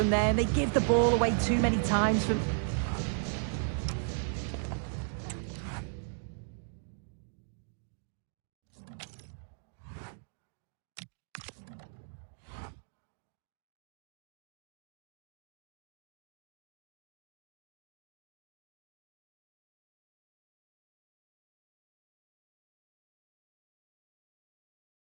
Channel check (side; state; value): left; silent; digital silence